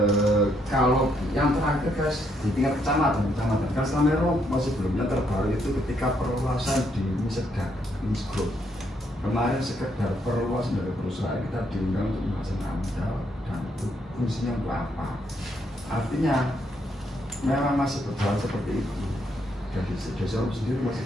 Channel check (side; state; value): both; normal; correlation 0.74